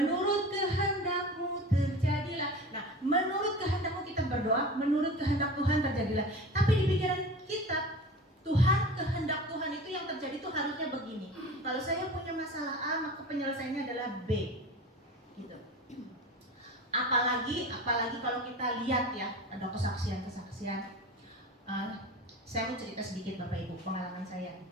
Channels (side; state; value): both; normal; correlation 0.35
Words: kehendakmu terjadilah. Nah, menurut kehendakmu kita berdoa, menurut kehendak Tuhan terjadilah. Tapi di pikiran kita, Tuhan, kehendak Tuhan itu yang terjadi itu harusnya begini. Kalau saya punya masalah A, maka penyelesaiannya adalah B, gitu. Apalagi kalau kita lihat ya, ada kesaksian. Saya mau cerita sedikit Bapak Ibu, pengalaman saya